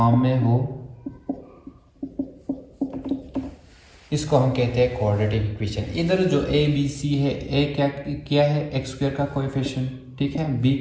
में हो, इसको हम कहते हैं क्वाड्रेटिक इक्वेशन। इधर जो ए बी सी है, ए क्या है एक्स स्क्वायर का कोएफिशिएंट, ठीक है, बी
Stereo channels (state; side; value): identical; both; correlation 1.00